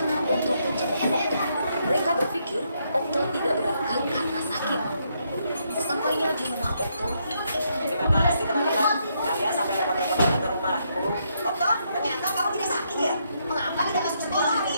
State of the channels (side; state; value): both; inverted; correlation -0.76